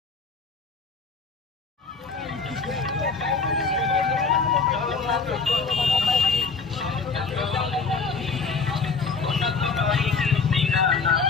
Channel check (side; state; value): right; quieter; 4.7 dB